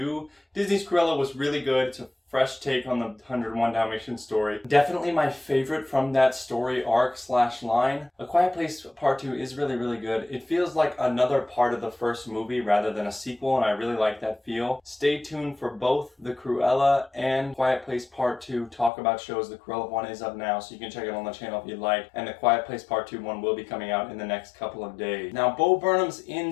Disney's Cruella was really good. It's a fresh take on the 101 Dalmatians story. Definitely my favorite from that story arc / line. A Quiet Place Part 2 is really good. It feels like another part of the first movie rather than a sequel, and I really like that feel. Stay tuned for both the Cruella and Quiet Place Part 2 talk about shows. The Cruella one is up now, so you can check it on the channel if you'd like, and the Quiet Place Part 2 one will be coming out in the next couple of days. Now, Bo Burnham's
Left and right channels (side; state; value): right; drops out; at 18.9 s